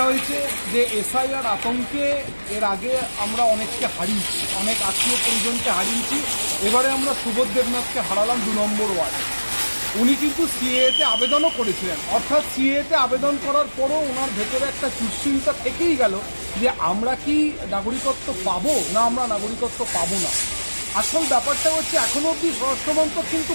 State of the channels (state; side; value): inverted; both; correlation -1.00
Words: হয়েছে যে এসআইআর আতঙ্কে এর আগে আমরা অনেককে হারিয়েছি, অনেক আত্মীয় পরিজনকে হারিয়েছি। এবারে আমরা সুবোধ দেবনাথকে হারালাম 2 নম্বর ওয়ার্ডে। উনি কিন্তু সিএতে আবেদনও করেছিলেন, অর্থাৎ সিএতে আবেদন করার পরও ওনার ভেতরে একটা দুশ্চিন্তা থেকেই গেল যে আমরা কি নাগরিকত্ব পাবো না আমরা নাগরিকত্ব পাবো না। আসল ব্যাপারটা হচ্ছে এখনো অবধি স্বরাষ্ট্রমন্ত্রক কিন্তু